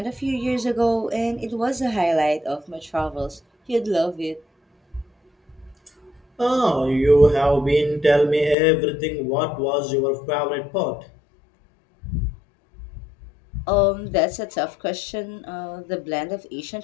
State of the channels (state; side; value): drops out; right; at 8.6 s